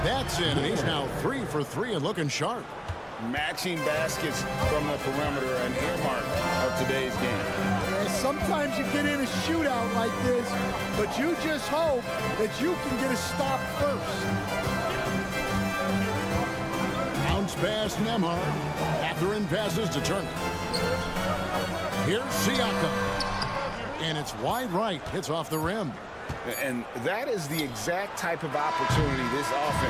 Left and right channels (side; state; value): both; identical; correlation 1.00